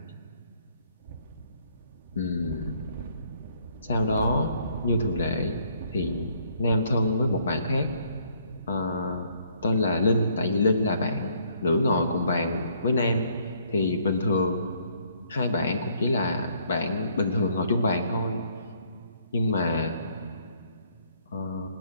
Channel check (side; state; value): both; inverted; correlation -0.65